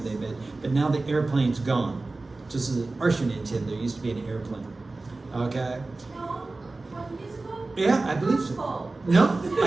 那边 but now the airplane's gone. 就是20年前 there used to be an airplane. Okay? No, 20 years ago? Yeah, I believe so. Oh. No,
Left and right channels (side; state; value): left; quieter; 3.3 dB